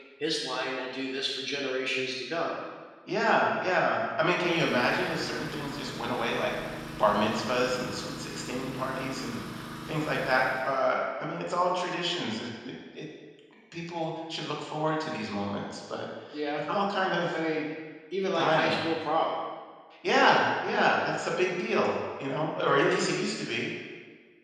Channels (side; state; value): both; identical; correlation 1.00